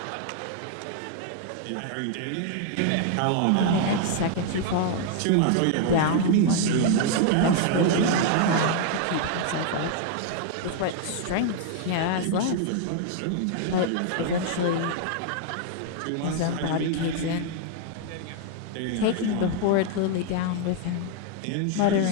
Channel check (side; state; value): both; different; correlation 0.00